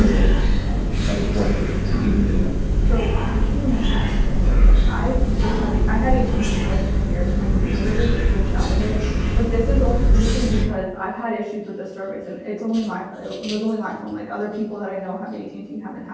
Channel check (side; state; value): both; identical; correlation 1.00